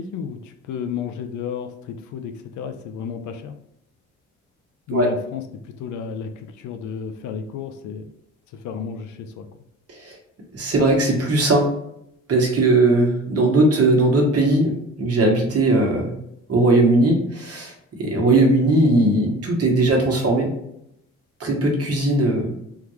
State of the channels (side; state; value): both; normal; correlation 0.40